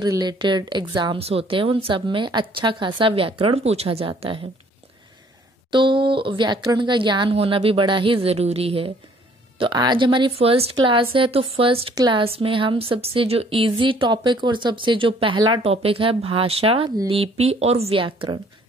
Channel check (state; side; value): normal; both; correlation 0.60